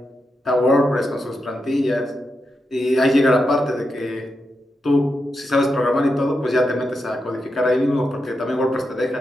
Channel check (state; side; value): normal; both; correlation 0.86